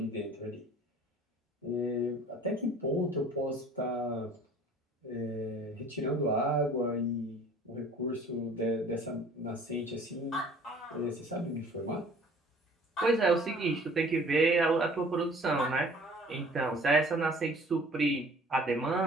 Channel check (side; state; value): both; normal; correlation 0.50